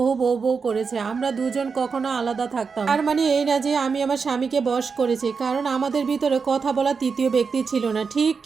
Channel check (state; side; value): quieter; left; 5.3 dB